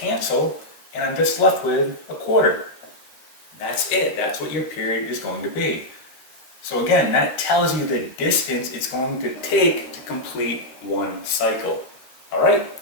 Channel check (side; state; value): right; late; 13 ms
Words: and I'm just left with a quarter. That's it. That's what your period is going to be. So again, that tells you the distance it's going to take to complete one cycle. All right,